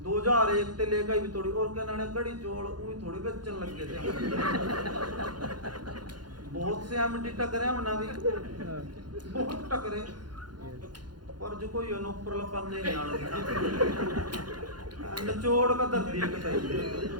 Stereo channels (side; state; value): left; late; 0.71 ms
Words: 2001 से लेकर भी थोड़ी और क्या नाने कड़ी चोल उही थोड़ी बेचन लग गए थे। बहुत से एमडी टकरे हमने भी, बहुत टकरे, पर जो कोई ऊपर लपन नहीं आना निचोड़ का धरती है कतई।